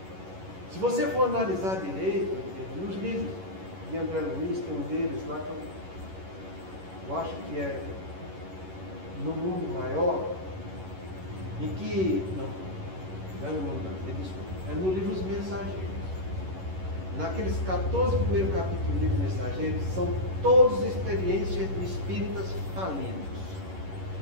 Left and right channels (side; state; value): left; late; 11 ms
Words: Se você for analisar direito, nos livros de André Luiz, tem um deles lá que eu acho que é No Mundo Maior, em que, não é no mundo, desculpa, é no livro Os Mensageiros. Naqueles 14 primeiros capítulos do livro Mensageiros, são todas experiências de espíritas falidos.